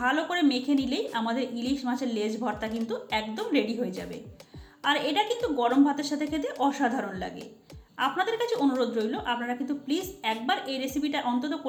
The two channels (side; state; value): both; identical; correlation 1.00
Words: করে মেখে নিলেই আমাদের ইলিশ মাছের লেজ ভর্তা কিন্তু একদম রেডি হয়ে যাবে। আর এটা কিন্তু গরম ভাতের সাথে খেতে অসাধারণ লাগে। আপনাদের কাছে অনুরোধ রইল আপনারা কিন্তু প্লিজ একবার এই রেসিপিটা অন্তত